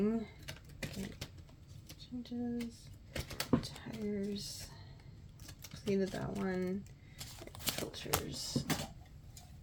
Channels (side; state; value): both; identical; correlation 1.00